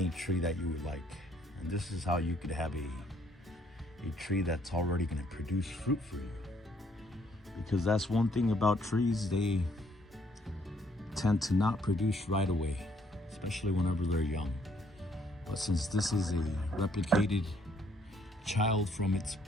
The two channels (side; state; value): both; normal; correlation 0.67